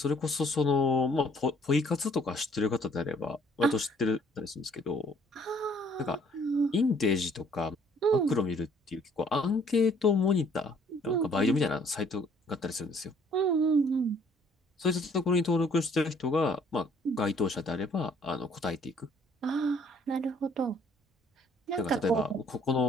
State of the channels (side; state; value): both; normal; correlation 0.61